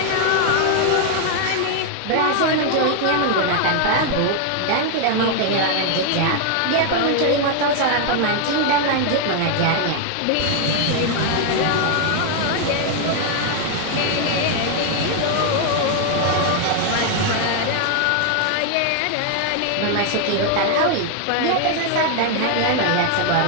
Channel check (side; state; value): both; different; correlation 0.00